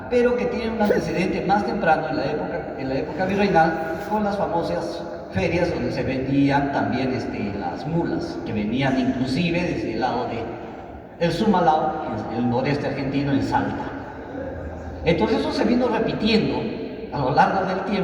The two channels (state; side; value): identical; both; correlation 1.00